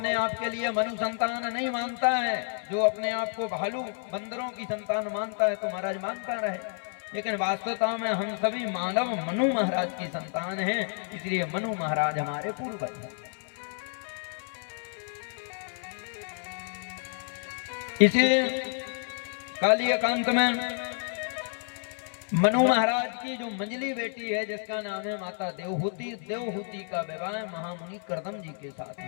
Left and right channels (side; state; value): right; silent; 57 dB below the other